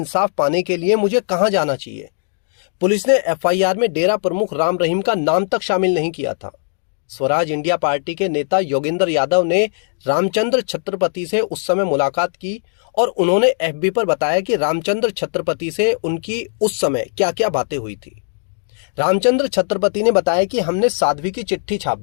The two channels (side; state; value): right; silent; digital silence